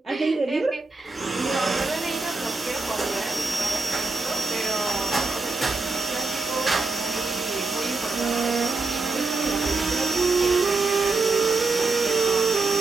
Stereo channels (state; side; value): quieter; left; 3.6 dB